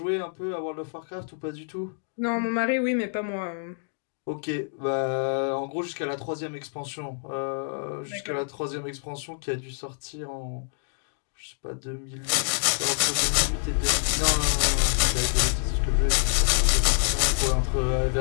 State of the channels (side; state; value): right; silent; digital silence